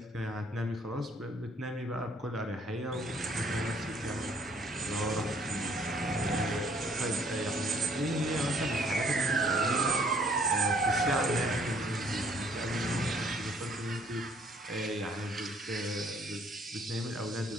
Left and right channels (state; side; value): normal; both; correlation 0.62